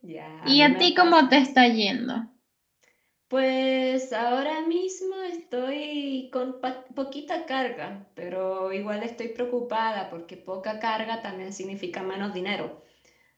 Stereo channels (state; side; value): identical; both; correlation 1.00